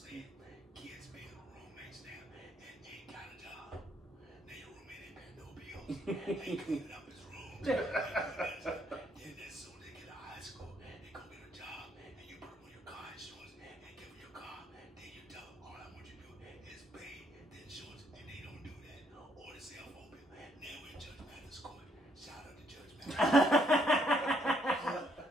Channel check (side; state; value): both; normal; correlation 0.71